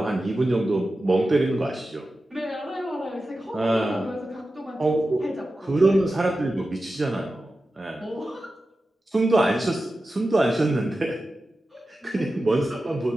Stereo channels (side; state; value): both; normal; correlation 0.93